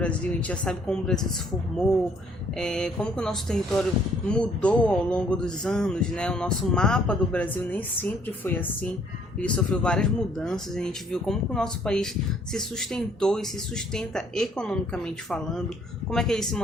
a gente já sabe como o Brasil se formou, como que o nosso território mudou ao longo dos anos, né? O nosso mapa do Brasil nem sempre foi assim, ele sofreu várias mudanças, a gente viu como que o nosso país se sustentou e se sustenta economicamente falando, como é que ele se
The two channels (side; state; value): both; normal; correlation 0.63